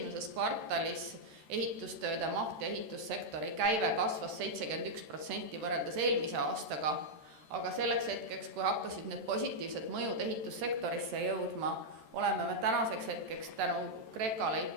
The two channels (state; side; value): late; left; 13 ms